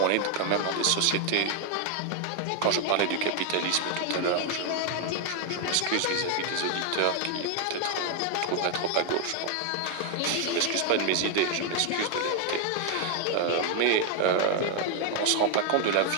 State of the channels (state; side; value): different; both; correlation 0.00